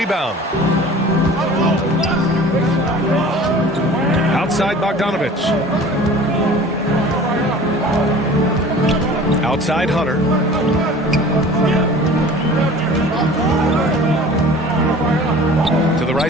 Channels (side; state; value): both; normal; correlation 0.44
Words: Outside Bogdanovich. Outside Hunter. To the